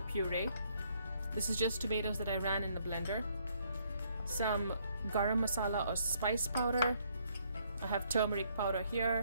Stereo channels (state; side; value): inverted; both; correlation -0.68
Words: puree. This is just tomatoes that I ran in the blender. Some garam masala or spice powder. I have turmeric powder